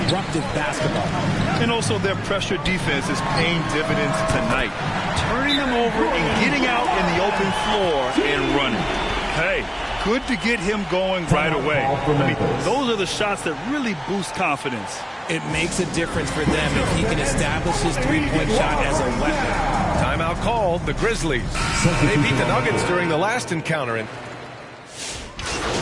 basketball. And also their pressure defense is paying dividends tonight. Turning them over and getting out in the open floor and running. Hey, good to get him going right away. I mean, those are the shots that really boost confidence. It makes a difference for them if he can establish his three-point shot as a weapon. Timeout called, the Grizzlies. They beat the Nuggets during the last encounter. And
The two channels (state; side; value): identical; both; correlation 1.00